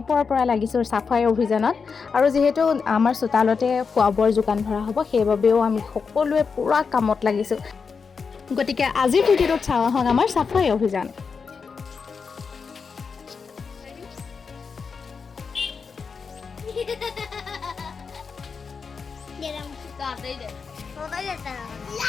পৰা লাগিছো সাফাই অভিযানত আৰু যেহেতু আমাৰ চোতালতে খোৱাবৰ যোগান ধৰা হ'ব সেইবাবেও আমি সকলোৱে পুৰা কামত লাগিছো গতিকে আজিৰ ভিডিঅ'ত চাওঁ আহক আমাৰ সাফাই অভিযান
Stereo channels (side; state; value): right; quieter; 5.4 dB